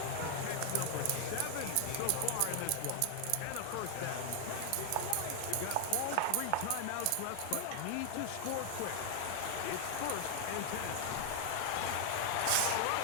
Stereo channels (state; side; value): different; both; correlation 0.00